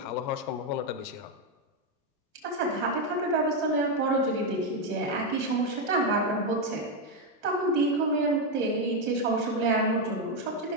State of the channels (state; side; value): normal; both; correlation 0.05